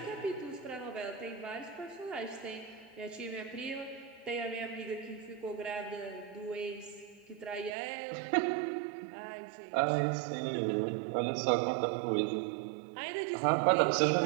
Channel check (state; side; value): drops out; left; at 7.7 s